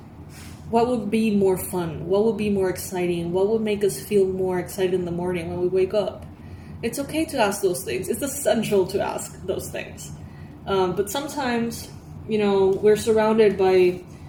what would be more fun? What would be more exciting? What would make us feel more excited in the morning when we wake up? It's okay to ask those things. It's essential to ask those things. But sometimes, you know, we're surrounded by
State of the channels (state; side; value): identical; both; correlation 1.00